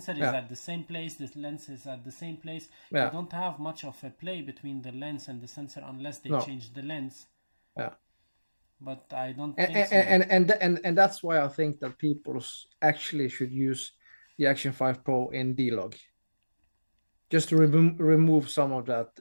is at the same place, the lens is at the same place. You don't have much of a play between the lens and the sensor unless they change the lens. Yeah. But I don't think so. And that's why I think that people actually should use the Action 5 Pro in D-Log, just to remove some of that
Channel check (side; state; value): both; inverted; correlation -1.00